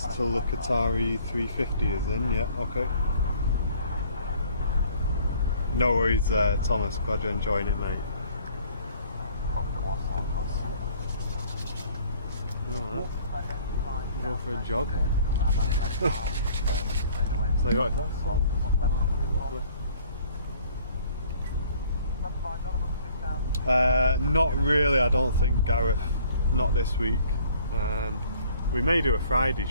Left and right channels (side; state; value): both; inverted; correlation -0.56